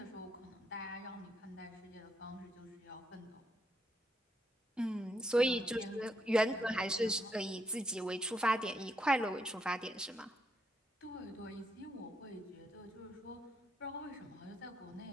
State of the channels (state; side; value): normal; both; correlation 0.77